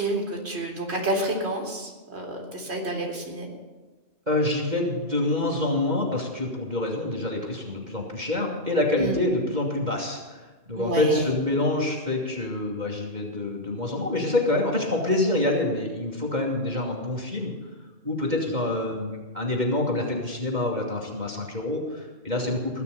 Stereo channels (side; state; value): left; late; 3.1 ms